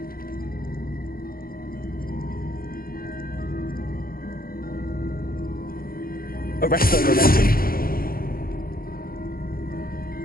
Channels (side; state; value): right; late; 0.42 ms